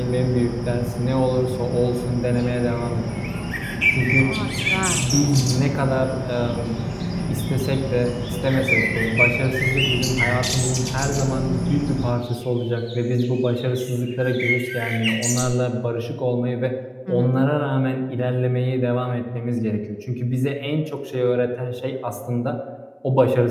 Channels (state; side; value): identical; both; correlation 1.00